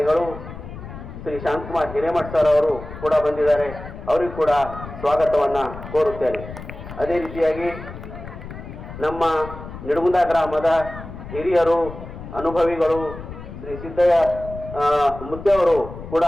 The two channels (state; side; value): noise; left; rumble, 12 dB below the sound